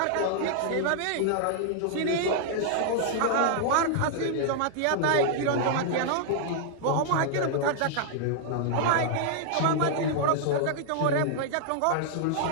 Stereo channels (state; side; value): different; both; correlation -0.01